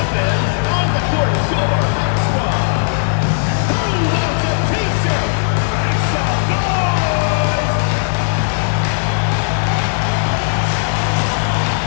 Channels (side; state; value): right; silent; digital silence